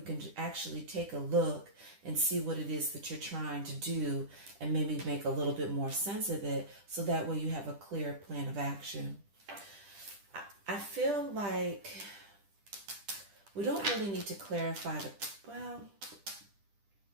actually take a look and see what it is that you're trying to do and maybe make a little bit more sense of it, so that way you have a clear plan of action. I feel like we don't really need to clarify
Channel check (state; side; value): late; left; 10 ms